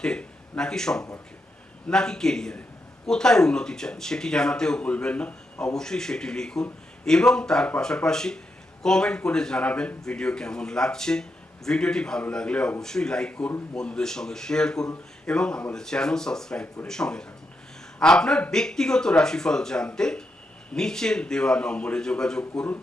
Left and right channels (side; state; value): both; normal; correlation 0.83